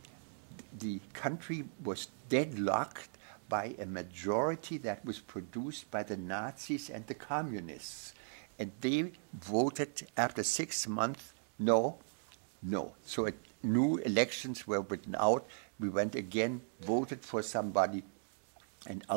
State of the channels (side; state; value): left; silent; digital silence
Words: the country was deadlocked by a majority that was produced by the Nazis and the communists. And they voted after 6 months, no. So new elections were written out. We went again, voted for somebody, and